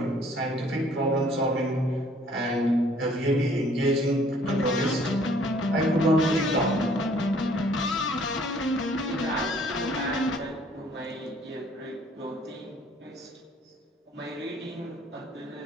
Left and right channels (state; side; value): normal; both; correlation 0.59